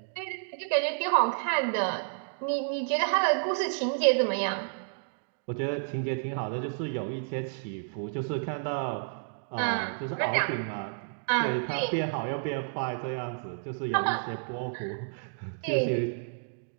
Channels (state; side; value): silent; left; digital silence